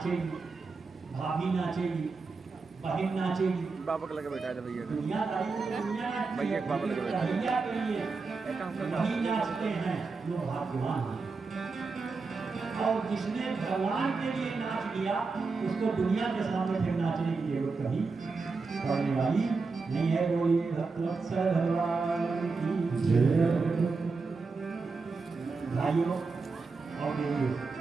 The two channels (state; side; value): quieter; left; 4.3 dB